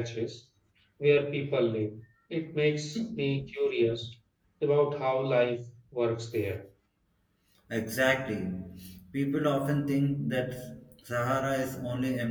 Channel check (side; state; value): both; identical; correlation 1.00